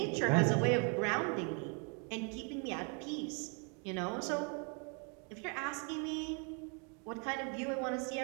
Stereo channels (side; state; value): left; quieter; 36.7 dB